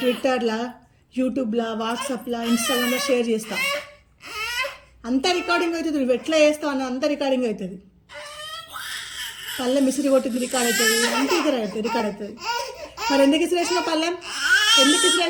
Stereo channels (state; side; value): identical; both; correlation 1.00